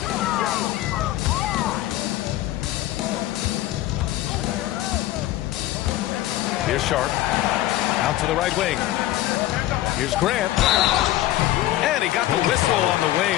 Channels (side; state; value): right; quieter; 15.1 dB